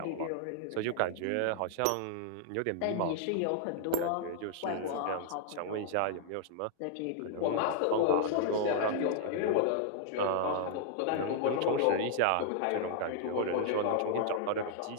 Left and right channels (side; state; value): both; different; correlation -0.01